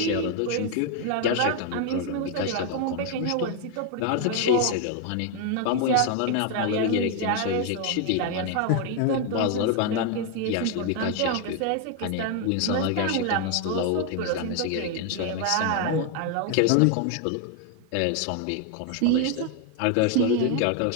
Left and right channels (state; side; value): different; both; correlation 0.00